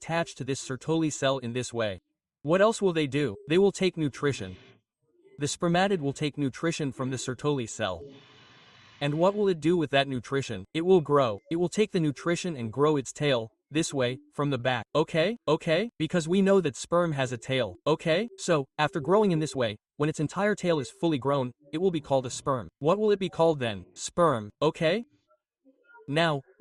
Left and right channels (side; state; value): both; identical; correlation 1.00